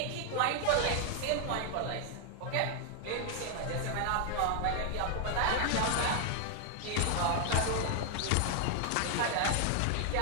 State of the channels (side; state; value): both; different; correlation 0.00